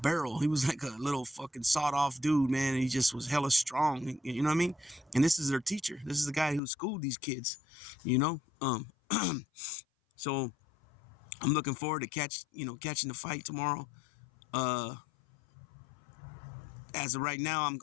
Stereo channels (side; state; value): right; drops out; at 6.6 s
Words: He was like a little fucking sawed off dude, man. And he just was hella strong. You know what I mean? And this is their teacher. This is the guy who schooled these kids. You know. So I'm looking forward to catching the fight tomorrow. As of right now, I'm